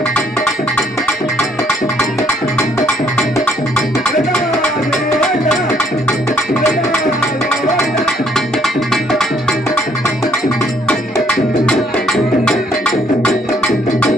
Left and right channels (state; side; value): normal; both; correlation 0.67